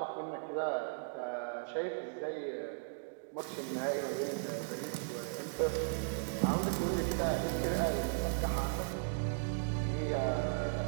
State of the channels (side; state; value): left; silent; digital silence